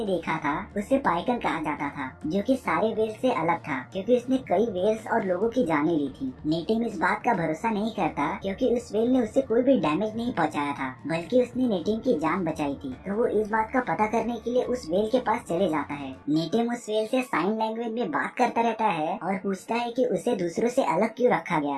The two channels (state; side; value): identical; both; correlation 1.00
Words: देखा था उसे पाइकन कहा जाता था, जो कि सारे व्हेल से अलग था क्योंकि उसने कई व्हेल्स और लोगों की जानें ली थी। नेटिव इस बात का भरोसा नहीं करता क्योंकि उस व्हेल ने उसे कोई भी डैमेज नहीं पहुंचाया था, बल्कि उसने नेटिव की जान बचाई थी। तो वो इस बात का पता करने के लिए उस व्हेल के पास चले जाता है। नेटिव उस व्हेल से साइन लैंग्वेज में बात करता रहता है और पूछता है कि उसे दूसरों से अलग क्यों रखा